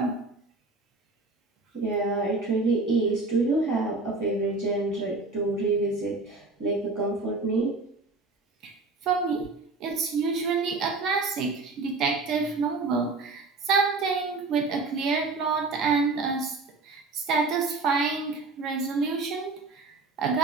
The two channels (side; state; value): left; quieter; 3.6 dB